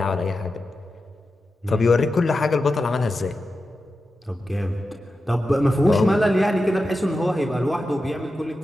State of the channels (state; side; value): normal; both; correlation 0.91